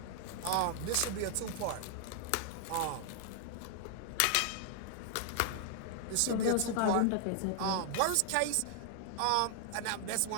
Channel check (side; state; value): both; different; correlation 0.00